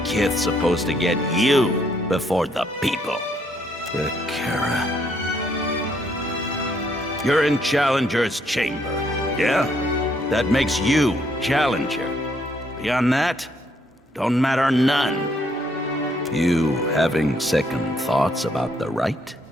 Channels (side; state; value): both; normal; correlation 0.70